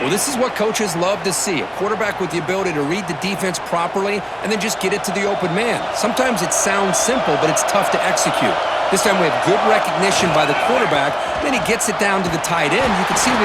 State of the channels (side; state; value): both; identical; correlation 1.00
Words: Well, this is what coaches love to see. A quarterback with the ability to read the defense properly and then just get it to the open man. Sometimes it sounds simple, but it's tough to execute. This time we have good recognition by the quarterback. Then he gets it down to the tight end. You can see